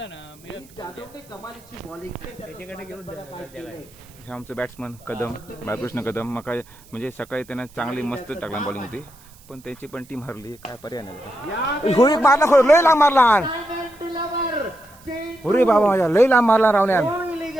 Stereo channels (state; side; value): noise; right; hiss, 26 dB below the sound